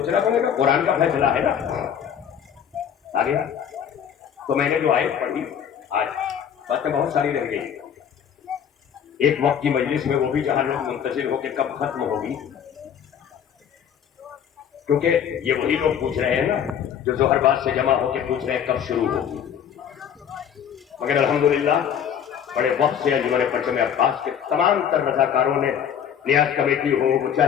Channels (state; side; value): quieter; right; 8.6 dB